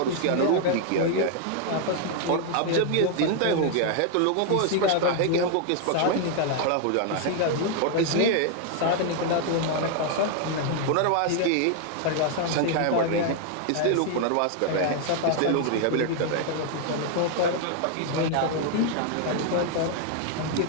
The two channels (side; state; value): both; different; correlation 0.00